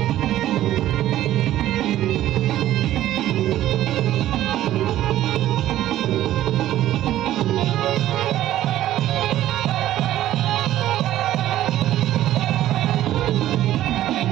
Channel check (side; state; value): left; quieter; 13.4 dB